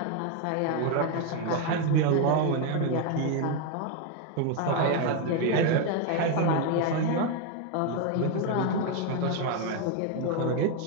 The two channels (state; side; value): different; both; correlation 0.01